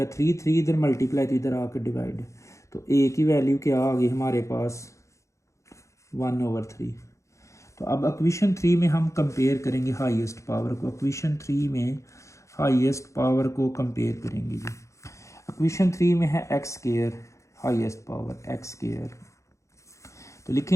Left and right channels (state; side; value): late; right; 0.15 ms